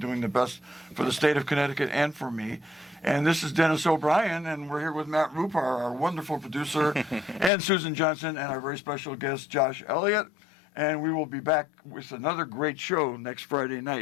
doing the best for the state of Connecticut and for me. And this is Dennis O'Brien, and we're here with Matt Rupar, our wonderful producer, and Susan Johnson, and our very special guest, Josh Elliott. And we will be back with another great show next Friday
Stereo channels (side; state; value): right; drops out; at 7.5 s